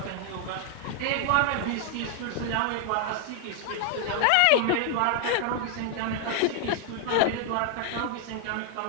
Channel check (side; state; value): both; different; correlation 0.00